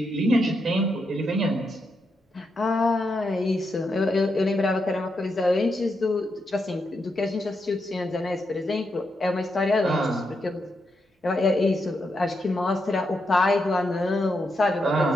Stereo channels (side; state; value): both; normal; correlation 0.83